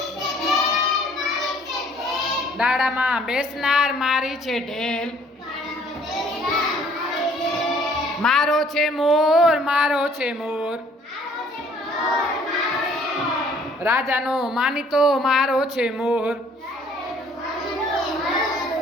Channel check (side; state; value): both; normal; correlation 0.59